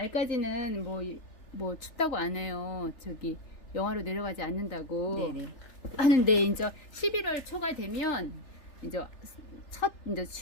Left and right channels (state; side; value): late; right; 3.4 ms